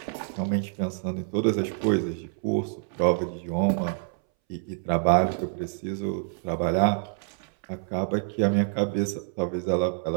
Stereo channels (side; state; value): left; silent; 60 dB below the other